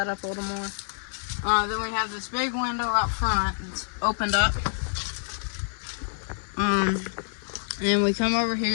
up a little more. Then we have this big window out front. It's opened up. And we come over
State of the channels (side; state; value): right; silent; 60 dB below the other